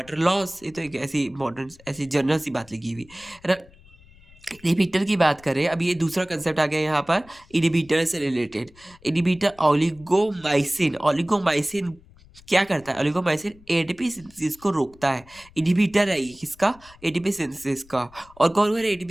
लॉस, ये तो एक ऐसी इम्पोर्टेंट ऐसी जनरल सी बात लिखी हुई है ना। इनहिबिटर की बात करें, अब ये दूसरा कंसेप्ट आ गया यहाँ पर इनहिबिटर से रिलेटेड। इनहिबिटर ओलिगोमाइसिन, ओलिगोमाइसिन क्या करता है? ओलिगोमाइसिन एटीपी सिंथेसिस को रोकता है। इनहिबिटर है ये किसका? एटीपी सिंथेसिस का। और कौन कौन है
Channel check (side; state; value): left; noise; rumble, 25 dB below the sound